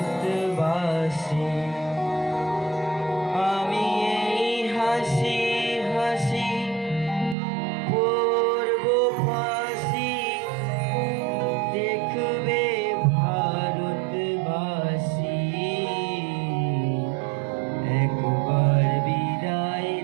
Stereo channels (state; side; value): drops out; left; at 7.4 s